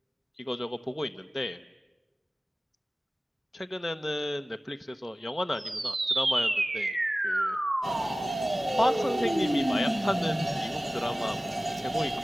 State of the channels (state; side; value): normal; both; correlation 0.97